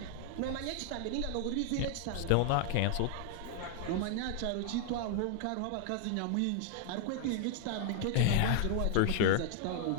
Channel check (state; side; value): different; both; correlation 0.00